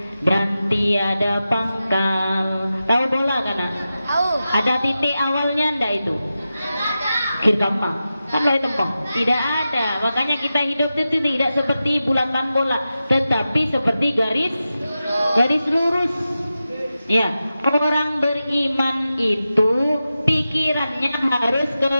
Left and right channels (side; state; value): both; inverted; correlation -0.92